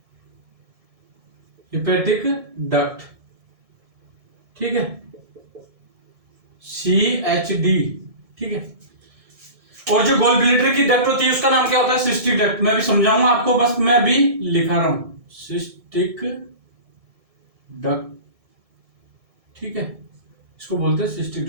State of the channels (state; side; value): late; left; 1.7 ms